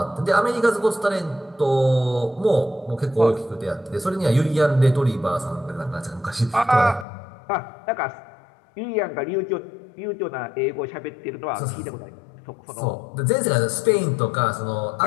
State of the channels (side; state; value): right; drops out; at 7.1 s